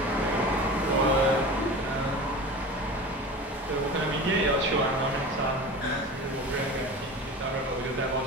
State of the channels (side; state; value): both; normal; correlation 0.34